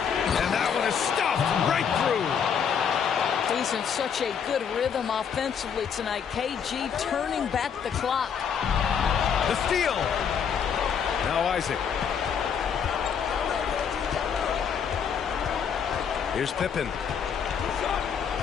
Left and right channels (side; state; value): right; quieter; 7.3 dB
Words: And that one is stuffed right through. He's in such a good rhythm offensively tonight. KG turning back the clock. The steal. Now Isaac. Here's Pippen.